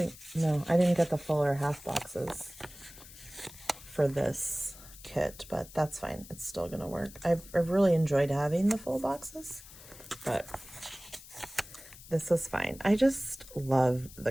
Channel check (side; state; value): left; noise; hiss, 18 dB below the sound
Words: didn't get the full or half boxes for this kit, but that's fine. It's still gonna work. I've really enjoyed having the full boxes, but this is fine. I just love